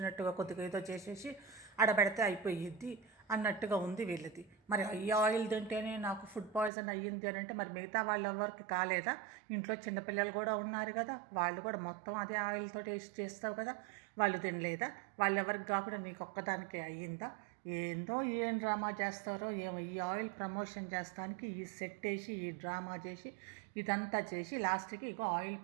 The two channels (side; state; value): left; drops out; at 6.7 s